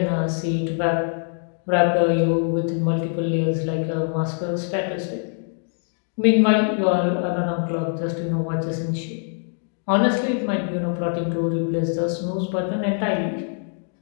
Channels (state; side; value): silent; right; 58 dB below the other